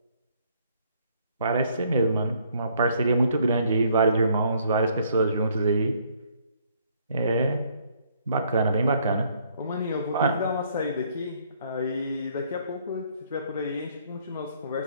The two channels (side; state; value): both; inverted; correlation -0.65